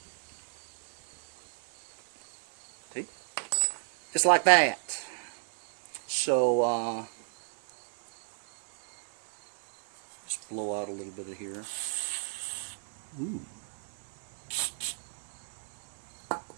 See? Just like that. So, just blow out a little bit of here. Ooh.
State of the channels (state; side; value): silent; left; digital silence